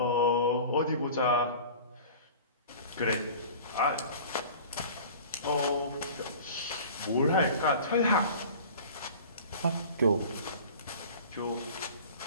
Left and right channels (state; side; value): inverted; both; correlation -0.41